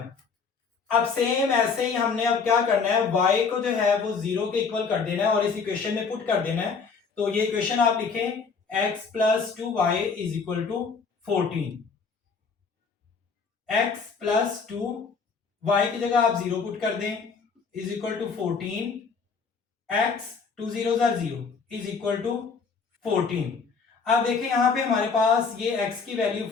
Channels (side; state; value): right; quieter; 5.2 dB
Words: अब सेम ऐसे ही हमने अब क्या करना है, y को जो है वो 0 के इक्वल कर देना है और इस इक्वेशन में पुट कर देना है। तो ये इक्वेशन आप लिखें x plus 2y is equal to 14। x plus 2 y की जगह आप 0 पुट कर दें is equal to 14। x 2 0 is equal to 14। अब देखिए यहां पे हमारे पास ये x की वैल्यू